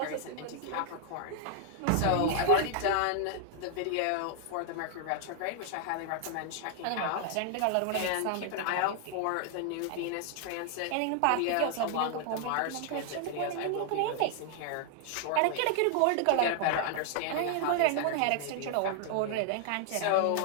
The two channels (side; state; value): both; different; correlation 0.00